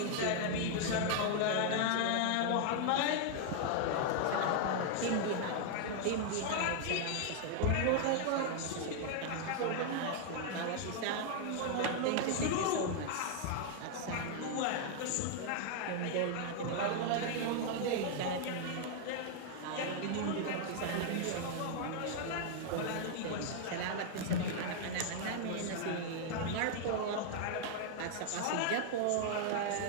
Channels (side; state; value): both; different; correlation 0.00